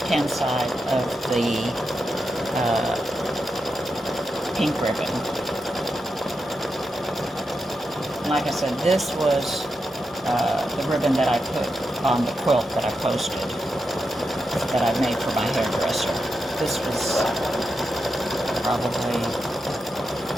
side of the pink ribbon. Like I said, this was the ribbon that I put on the quilt that I posted, that I made for my hairdresser. This was probably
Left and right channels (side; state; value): both; normal; correlation 0.87